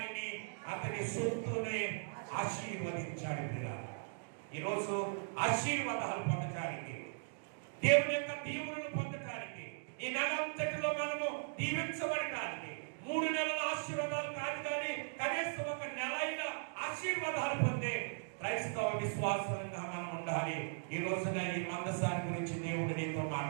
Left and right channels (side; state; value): left; silent; digital silence